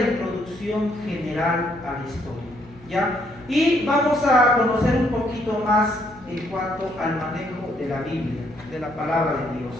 general a la historia, ¿ya? Y vamos a conocer un poquito más en cuanto al manejo de la Biblia, de la palabra de Dios.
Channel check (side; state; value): left; noise; hum, 23 dB below the sound